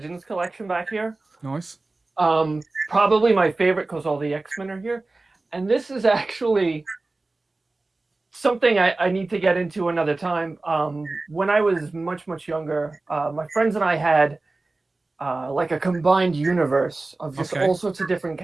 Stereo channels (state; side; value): quieter; left; 3.2 dB